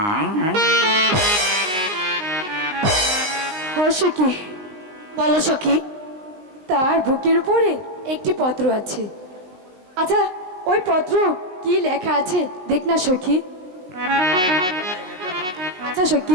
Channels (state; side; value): late; left; 19 ms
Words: সখী বলো সখী। তার বুকের উপরে একটি পত্র আছে। আচ্ছা ওই পত্র কি লেখা আছে দেখ না সখী। আচ্ছা